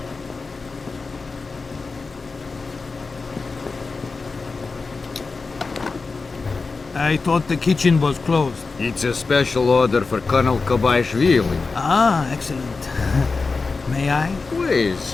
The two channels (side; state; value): right; quieter; 4.2 dB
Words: I thought the kitchen was closed. It's a special order for Colonel Kobaishvili. Ah, excellent. May I?